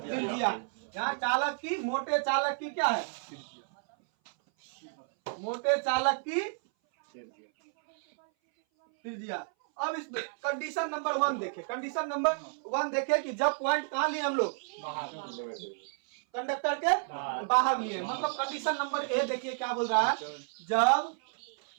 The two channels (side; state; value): left; silent; 57 dB below the other